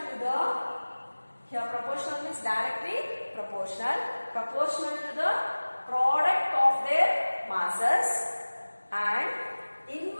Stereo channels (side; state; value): both; inverted; correlation -1.00